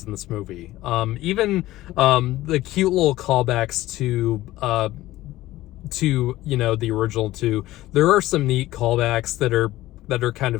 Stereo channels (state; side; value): quieter; right; 16.3 dB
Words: in this movie. Even the cute little callbacks to the original 2. There are some neat callbacks that are kind